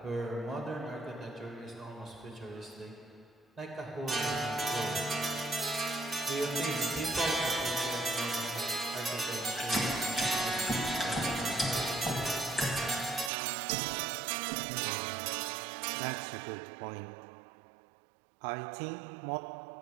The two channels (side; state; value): left; drops out; at 13.3 s